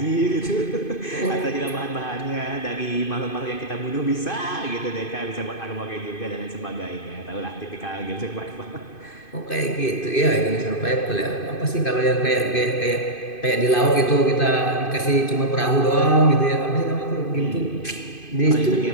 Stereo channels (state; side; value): late; right; 2.5 ms